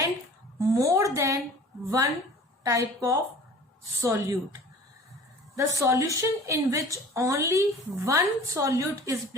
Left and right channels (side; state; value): both; normal; correlation 0.44